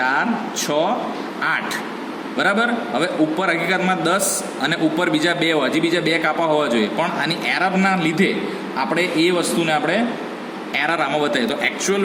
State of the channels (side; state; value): both; identical; correlation 1.00